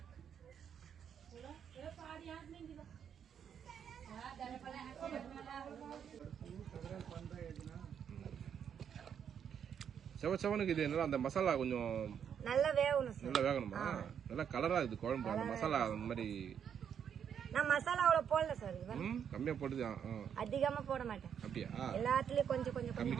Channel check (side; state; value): left; quieter; 8.2 dB